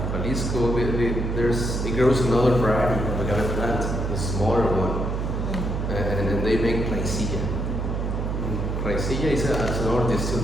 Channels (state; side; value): noise; right; hum, 1 dB below the sound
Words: Jalisco, it grows another variety of agave plant, a smaller one, and then they make plaisilla. Plaisilla is another